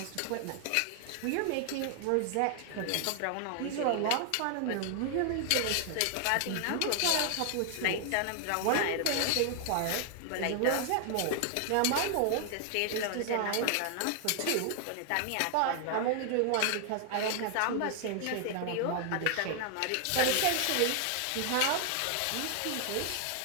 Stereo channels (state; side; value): different; both; correlation 0.00